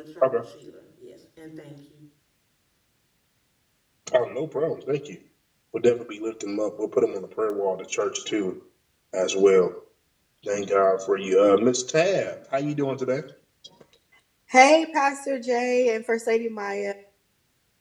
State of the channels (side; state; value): both; identical; correlation 1.00